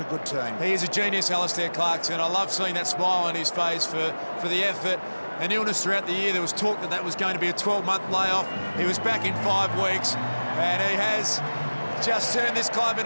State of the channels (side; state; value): both; inverted; correlation -1.00